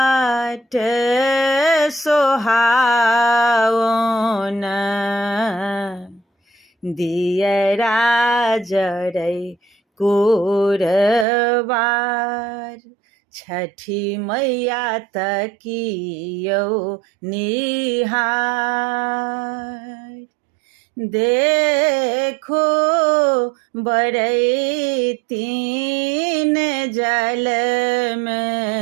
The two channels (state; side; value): drops out; left; at 11.2 s